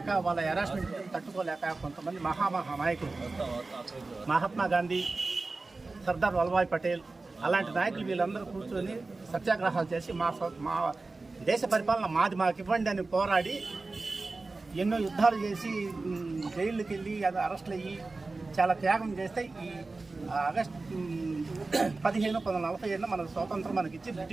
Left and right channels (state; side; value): quieter; left; 3.5 dB